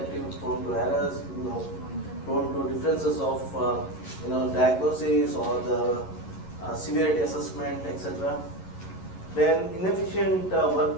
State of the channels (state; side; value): late; right; 11 ms